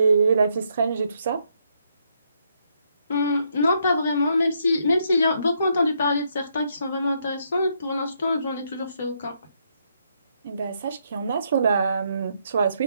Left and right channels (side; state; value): both; inverted; correlation -0.75